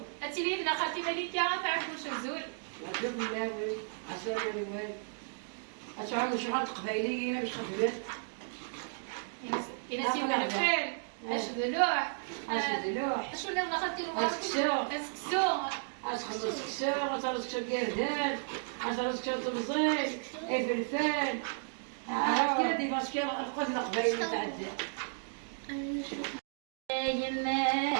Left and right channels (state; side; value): silent; left; digital silence